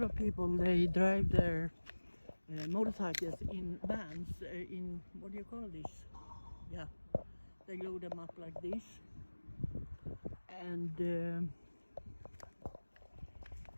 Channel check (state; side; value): inverted; both; correlation -1.00